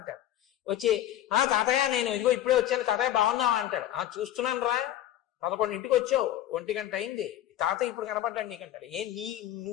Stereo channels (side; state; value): right; quieter; 12.6 dB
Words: వచ్చి తాతయ్య నేను ఇదిగో ఇప్పుడే వచ్చాను, తాతయ్య బాగున్నావా అంటాడు. చూస్తున్నాను రా 11ంటికి వచ్చావు, 1 గంట అయింది, తాత ఇప్పుడు కనపడ్డాడు నీకంటాడు.